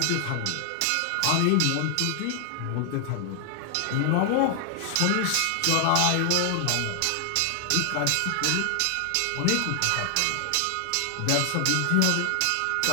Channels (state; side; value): different; both; correlation 0.00